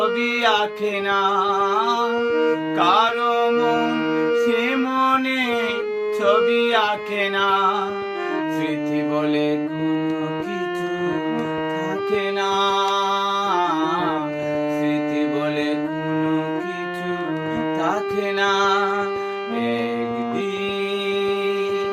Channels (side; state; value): both; identical; correlation 1.00